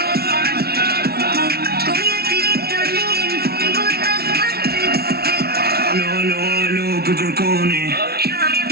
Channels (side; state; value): left; late; 0.45 ms